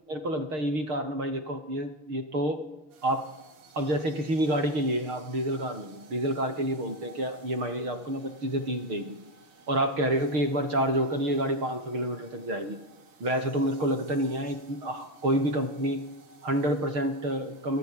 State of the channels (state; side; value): late; left; 6.6 ms